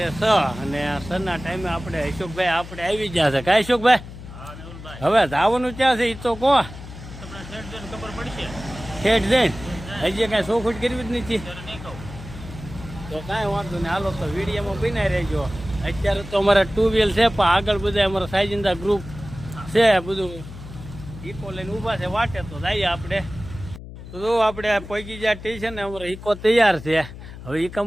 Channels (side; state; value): left; noise; hum, 13 dB below the sound